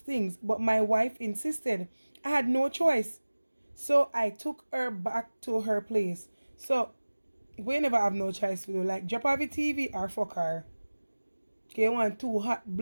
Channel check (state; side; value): inverted; both; correlation -1.00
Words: things, but my wife insisted. I had no choice. So I took her back to her place. So we never have no choice to do like drop off the TV or fuck her. Okay, one two hot